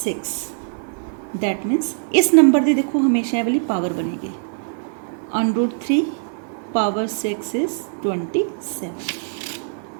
6. That means इस number की देखो हमेशा ये वाली power बनेगी. √3 power 6 is 27.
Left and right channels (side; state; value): left; silent; digital silence